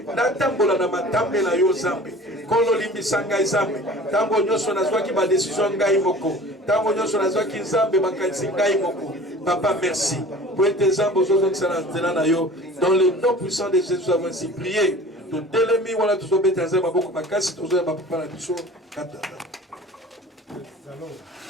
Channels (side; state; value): both; normal; correlation 0.43